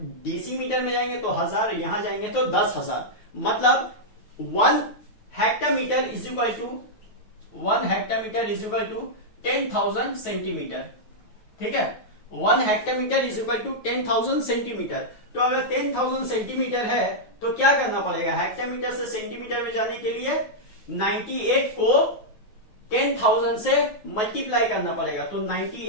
डेसीमीटर में जाएंगे तो 1000, यहां जाएंगे तो 10,000। मतलब 1 hectometre is equal to 10,000 centimetre, ठीक है। 1 hectometre is equal to 10,000 centimetre. तो अगर 10,000 सेंटीमीटर है तो क्या करना पड़ेगा, हेक्टोमीटर से सेंटीमीटर में जाने के लिए 98 को 10,000 से मल्टीप्लाई करना पड़ेगा। तो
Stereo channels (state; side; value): late; right; 9.4 ms